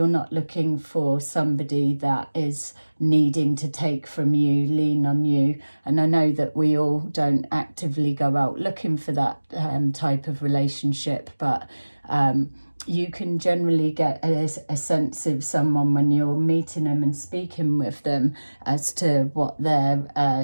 not looking for somebody that is needing to take from you, lean on you. And I know that we all don't actively go out looking for that type of relationship, but you can generally get a sense of someone when you're meeting them and speaking with them as to what their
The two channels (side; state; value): both; inverted; correlation -1.00